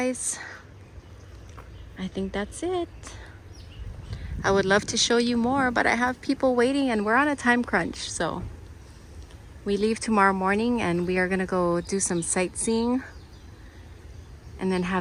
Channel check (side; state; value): both; identical; correlation 1.00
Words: I think that's it. I would love to show you more, but I have people waiting and we're on a time crunch. So we leave tomorrow morning and we are gonna go do some sightseeing and then